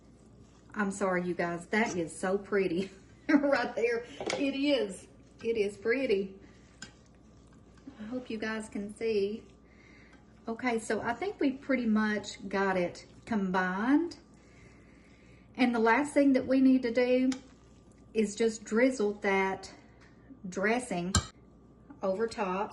I'm sorry, you guys. That is so pretty. Right there. It is. It is pretty. I hope you guys can see. Okay, so I think we pretty much got it combined. And the last thing that we need to do is just drizzle that dressing over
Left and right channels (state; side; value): identical; both; correlation 1.00